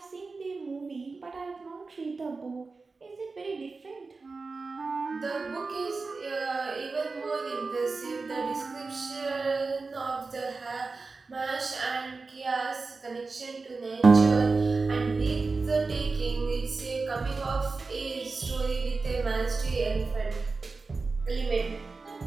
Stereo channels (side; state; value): left; quieter; 4.0 dB